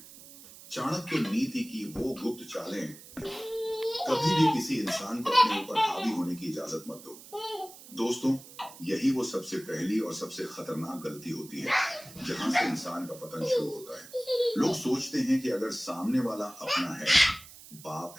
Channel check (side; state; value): right; noise; hiss, 18 dB below the sound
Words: चाणक्य नीति की वो गुप्त चालें। कभी भी किसी इंसान को अपने ऊपर हावी होने की इजाजत मत दो। दोस्तों, यही वो सबसे पहली और सबसे खतरनाक गलती होती है जहां से इंसान का पतन शुरू होता है। लोग सोचते हैं कि अगर सामने वाला अपना है, बाप